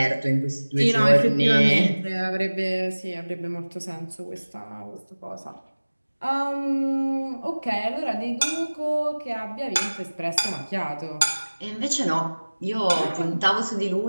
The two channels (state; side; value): inverted; both; correlation -1.00